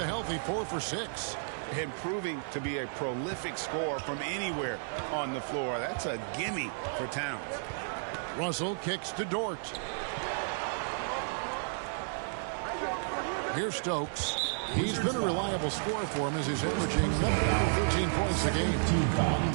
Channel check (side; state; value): left; silent; 56 dB below the other